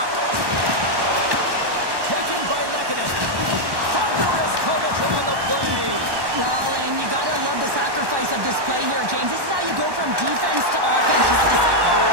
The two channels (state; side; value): late; left; 1.1 ms